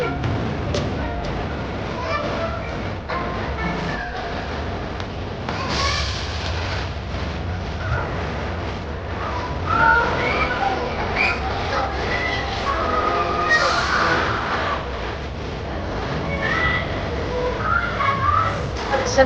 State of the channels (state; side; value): identical; both; correlation 1.00